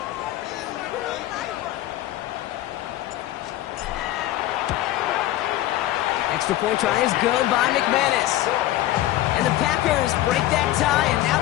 Extra point try is good by McManus. And the Packers break that tie and now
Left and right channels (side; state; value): right; quieter; 14.7 dB